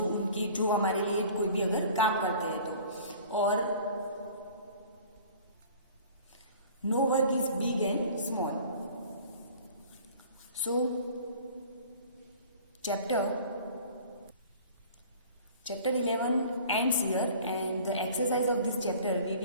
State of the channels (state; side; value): inverted; both; correlation -0.47